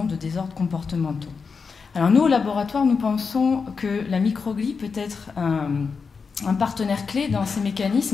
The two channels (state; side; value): quieter; right; 5.2 dB